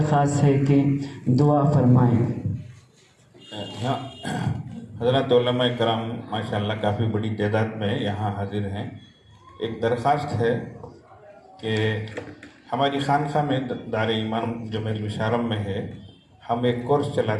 ہے کہ دعا فرمائیں۔ حضرات علماء کرام ماشاءاللہ کافی بڑی تعداد میں یہاں حاضر ہیں۔ ایک درخواست ہے کہ ہماری خانقاہ میں دار ایمان جو مشارم میں ہے، ہم ایک کورس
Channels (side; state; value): both; identical; correlation 1.00